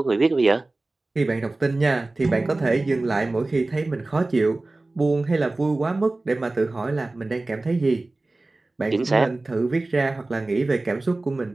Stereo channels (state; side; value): quieter; left; 3.0 dB